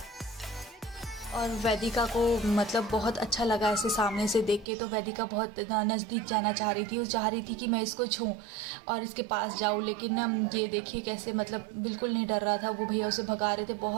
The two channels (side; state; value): left; drops out; at 4.7 s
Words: और वैदिका को मतलब बहुत अच्छा लगा ऐसे सामने से देख के, तो वैदिका बहुत नज़दीक जाना चाह रही थी। वो चाह रही थी कि मैं इसको छूं और इसके पास जाऊं, लेकिन ना ये देखिए कैसे मतलब बिल्कुल नहीं डर रहा था। वो भैया उसे भगा रहे थे,